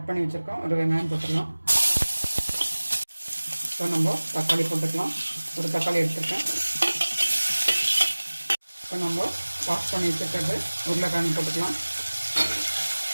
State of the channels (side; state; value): both; inverted; correlation -1.00